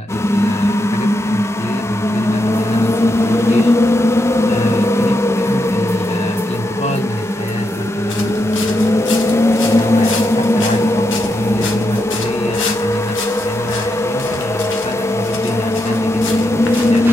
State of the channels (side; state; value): both; normal; correlation 0.83